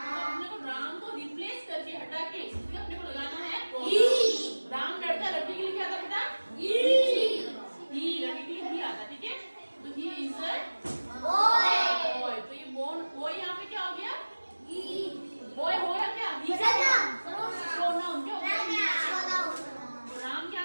अपने को राम को रिप्लेस करके हटा के इसमें अपने को लगाना है राम। लड़का, लड़की के लिए क्या आता बेटा? ही, लड़की के लिए ही आता, ठीक है? तो ही इज अ बॉय, तो ये बॉय यहाँ पे क्या हो गया? बॉय हो गया क्या? प्रोनाउन क्या हो गया? राम क्या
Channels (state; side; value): inverted; both; correlation -1.00